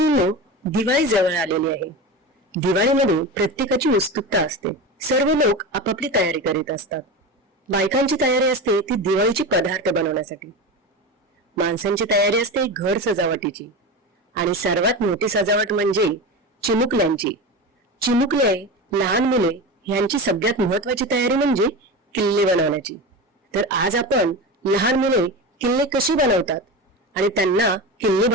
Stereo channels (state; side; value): normal; both; correlation 0.25